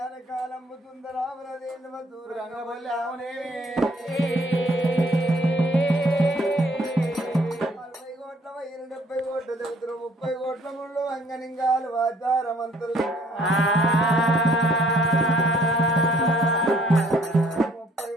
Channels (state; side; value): normal; both; correlation 0.61